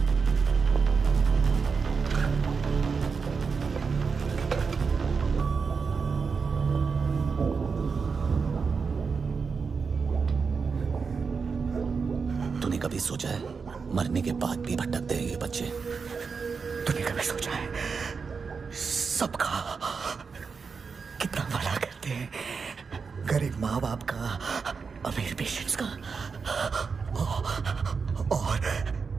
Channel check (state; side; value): quieter; left; 5.3 dB